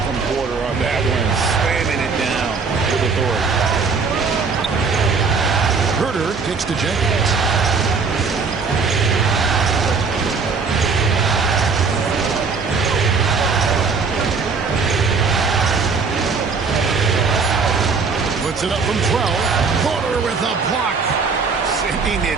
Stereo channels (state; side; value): quieter; left; 4.9 dB